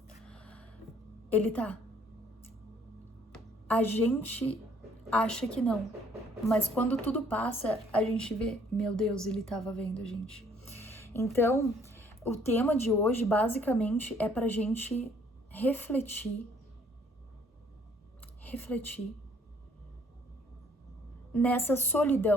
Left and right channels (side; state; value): both; normal; correlation 0.61